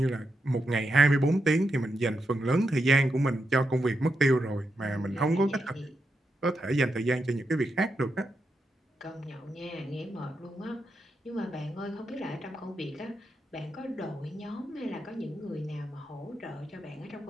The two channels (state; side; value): normal; both; correlation 0.85